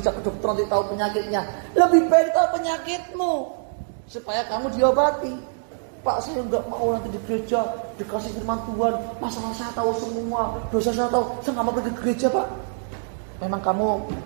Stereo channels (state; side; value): silent; left; digital silence